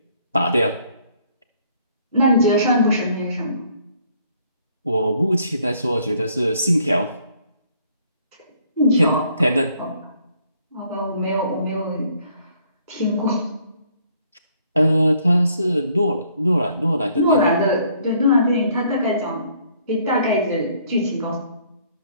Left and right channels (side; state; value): both; inverted; correlation -0.64